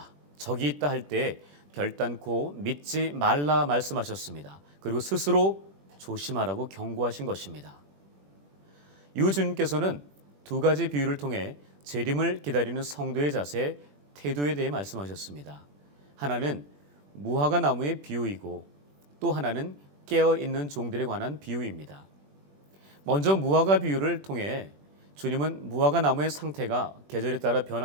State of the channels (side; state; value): left; late; 21 ms